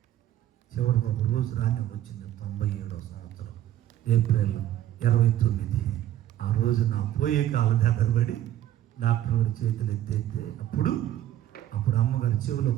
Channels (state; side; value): quieter; left; 12.5 dB